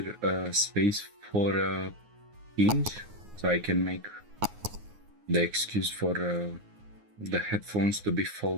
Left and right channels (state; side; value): late; left; 9.6 ms